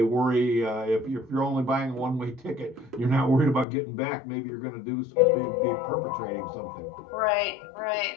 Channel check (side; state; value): right; drops out; at 3.7 s